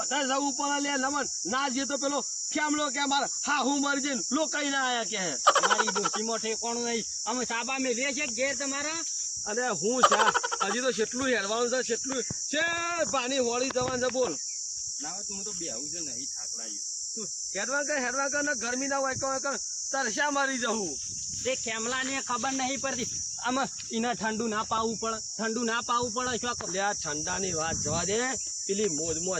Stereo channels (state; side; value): identical; both; correlation 1.00